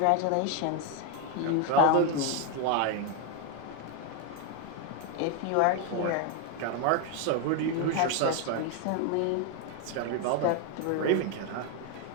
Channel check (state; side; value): different; both; correlation 0.01